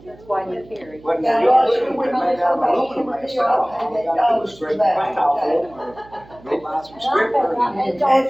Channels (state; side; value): noise; right; hum, 23 dB below the sound